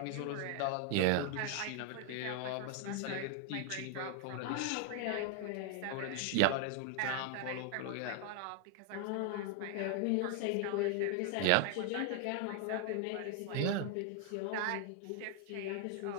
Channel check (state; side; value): different; both; correlation 0.00